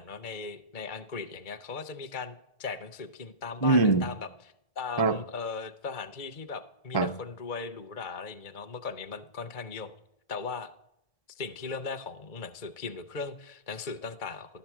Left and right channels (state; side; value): late; right; 2.2 ms